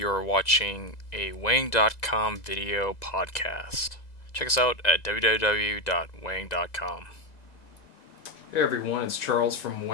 watching a Weighing.com video podcast. Check us out at www.weighing.com. Hey everyone, it's Charles from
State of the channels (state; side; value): late; right; 2.0 ms